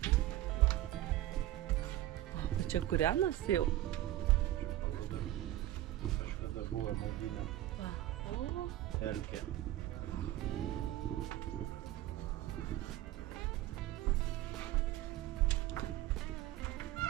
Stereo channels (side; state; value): left; quieter; 14.6 dB